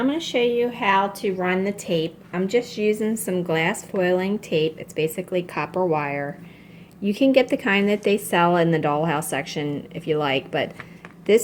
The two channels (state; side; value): identical; both; correlation 1.00